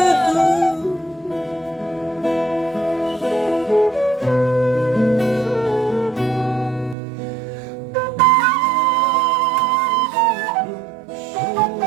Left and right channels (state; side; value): drops out; left; at 7.0 s